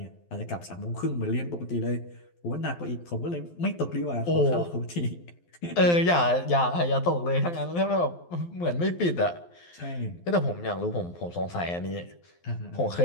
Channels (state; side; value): late; right; 12 ms